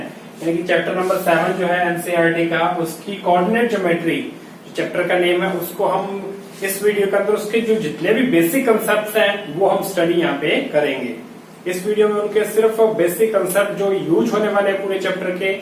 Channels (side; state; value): both; identical; correlation 1.00